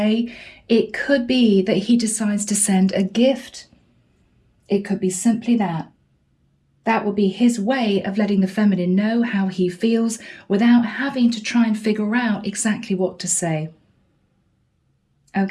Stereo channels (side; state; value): both; identical; correlation 1.00